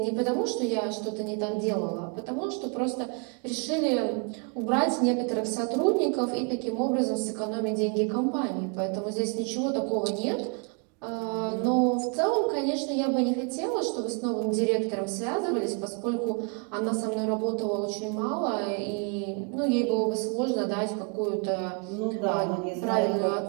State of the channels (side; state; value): left; quieter; 35.7 dB